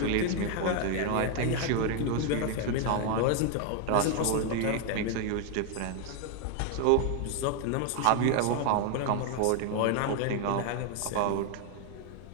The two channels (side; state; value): both; different; correlation 0.00